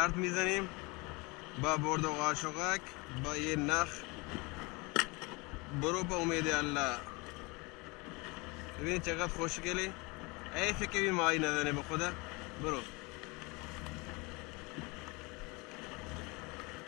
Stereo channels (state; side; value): quieter; right; 26.7 dB